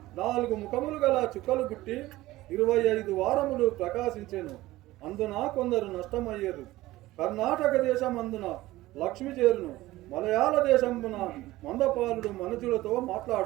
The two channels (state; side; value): quieter; left; 17.4 dB